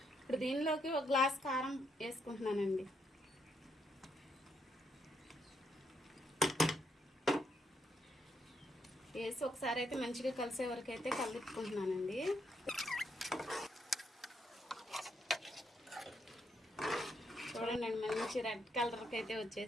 ఇప్పుడు దీనిలోకి 1 గ్లాస్ కారం వేసుకుంటున్నానండి. వేసి ఒకసారి అయితే మంచిగా కలిసే వరకు అయితే కలుపుకుంటున్నానండి. చూడండి, మంచి రెడ్ కలర్కి అయితే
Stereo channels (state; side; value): normal; both; correlation 0.77